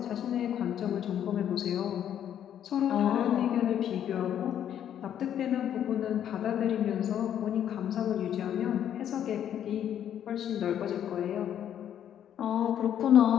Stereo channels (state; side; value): quieter; right; 10.0 dB